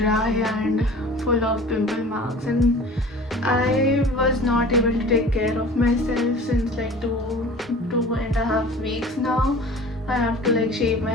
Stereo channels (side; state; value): both; normal; correlation 0.43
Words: and full of pimple marks, and I was not able to take care of myself since like two and a half weeks now. I have to shave